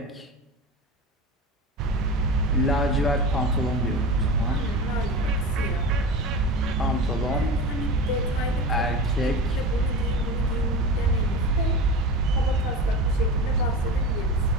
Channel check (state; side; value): normal; both; correlation 0.29